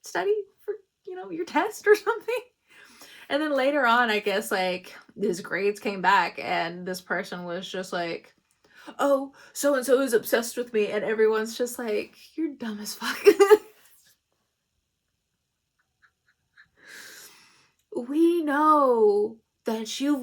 study for, your test or something? And then later on, I guess like his grades came back, and this person was just like, oh, so-and-so is obsessed with me, and everyone's just like, you're dumb as fuck. We know that you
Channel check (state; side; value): identical; both; correlation 1.00